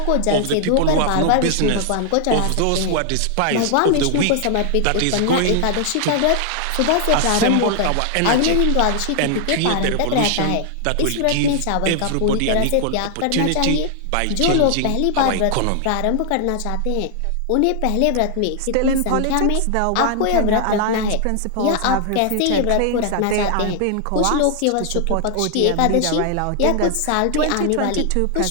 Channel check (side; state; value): both; different; correlation 0.00